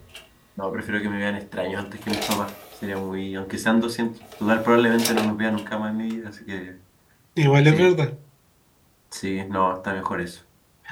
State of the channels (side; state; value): both; identical; correlation 1.00